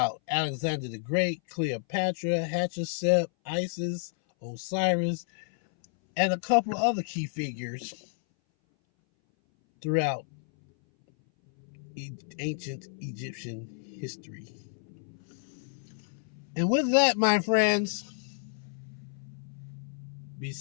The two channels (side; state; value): right; silent; 58 dB below the other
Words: Alexander the Great, Cleopatra, Hatshepsut, Isis, Osiris, and a couple of other key figures throughout ancient Egyptian history. And with that, my friends, be